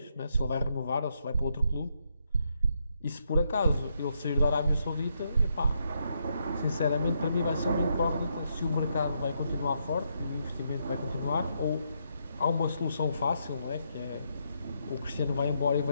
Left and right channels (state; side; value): inverted; both; correlation -0.78